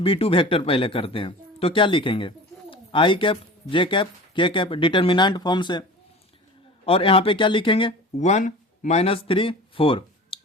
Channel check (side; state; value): both; normal; correlation 0.37